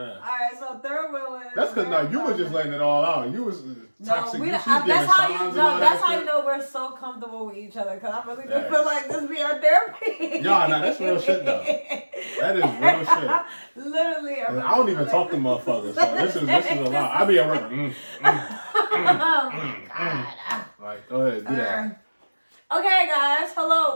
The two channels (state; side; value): inverted; both; correlation -1.00